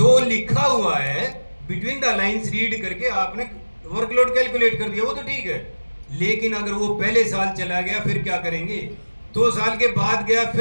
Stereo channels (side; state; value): both; inverted; correlation -1.00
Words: लिखा हुआ है, बिटवीन द लाइंस रीड करके आपने वर्कलोड कैलकुलेट कर दिया, वो तो ठीक है। लेकिन अगर वो पहले साल चला गया फिर क्या करेंगे, 2 साल के बाद गया